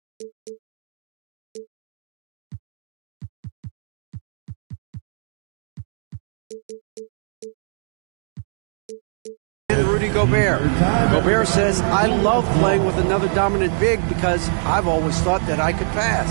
Rudy Gobert. Gobert says, I love playing with another dominant big because I've always thought that I could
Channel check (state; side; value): silent; left; 58 dB below the other